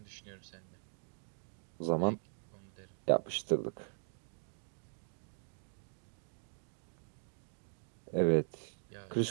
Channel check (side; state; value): left; silent; digital silence